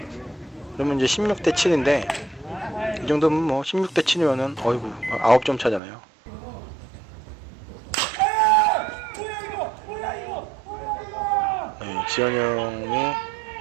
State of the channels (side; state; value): left; drops out; at 5.8 s